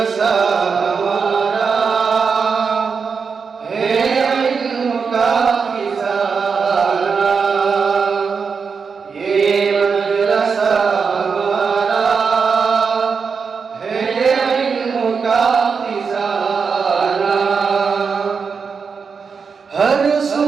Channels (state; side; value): quieter; left; 5.6 dB